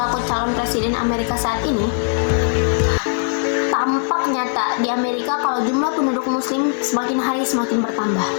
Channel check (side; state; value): right; silent; 61 dB below the other